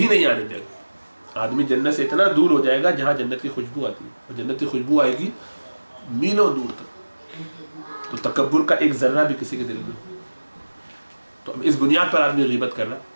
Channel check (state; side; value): inverted; both; correlation -1.00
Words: نہیں آنے دے گا۔ آدمی جنت سے اتنا دور ہو جائے گا جہاں جنت کی خوشبو آتی ہے، اور جنت کی خوشبو آئے گی میلوں دور تک۔ تو تکبر کا ایک ذرہ بھی کسی کے دل میں، تو اب اس بنیاد پر آدمی غیبت کر رہا،